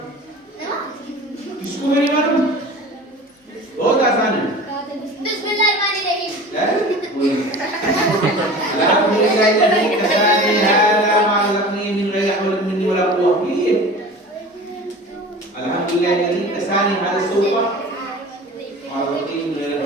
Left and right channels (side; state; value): both; normal; correlation 0.38